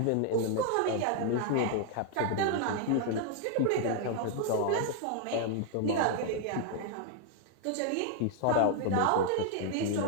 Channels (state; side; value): different; both; correlation 0.00